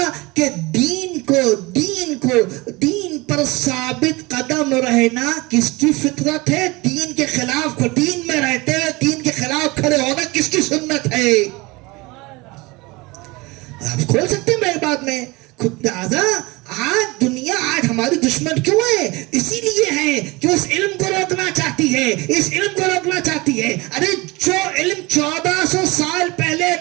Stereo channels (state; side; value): quieter; left; 23.5 dB